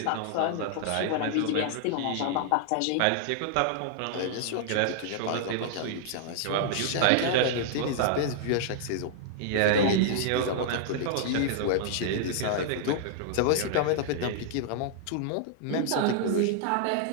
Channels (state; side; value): different; both; correlation -0.01